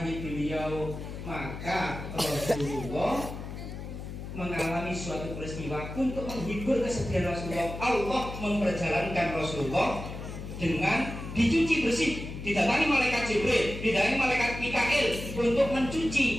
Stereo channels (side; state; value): left; noise; hum, 9 dB below the sound